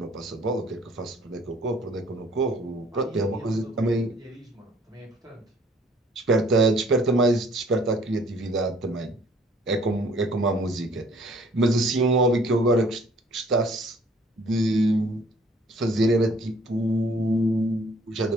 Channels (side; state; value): both; normal; correlation 0.58